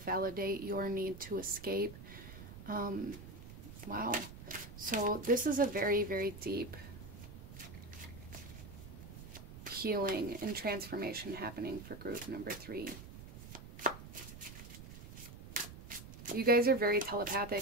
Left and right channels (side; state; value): right; noise; rumble, 13 dB below the sound